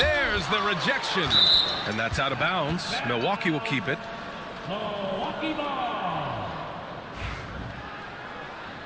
there's the rejection. And that's out of bounds. Milwaukee will keep it. Milwaukee ball.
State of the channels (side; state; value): both; identical; correlation 1.00